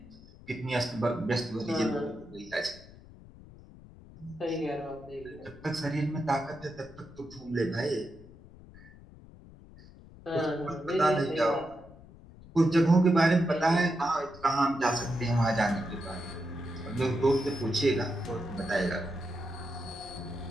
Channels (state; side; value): noise; left; rumble, 20 dB below the sound